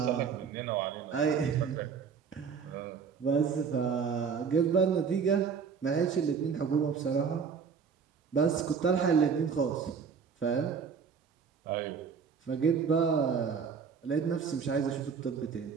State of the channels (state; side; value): quieter; left; 6.2 dB